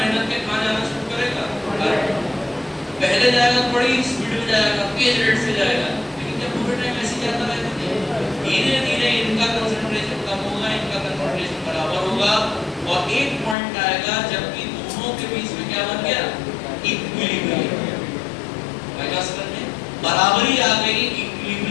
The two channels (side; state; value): right; drops out; at 13.6 s